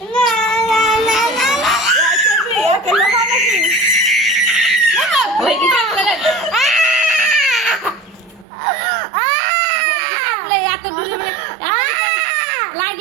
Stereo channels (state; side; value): drops out; left; at 8.5 s